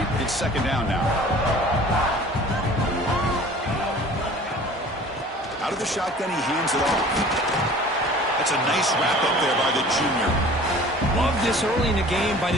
It's 2nd down now. Out of the shotgun, he hands it off. That's a nice wrap-up there by the junior. Love this early in the game by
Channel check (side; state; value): both; normal; correlation 0.46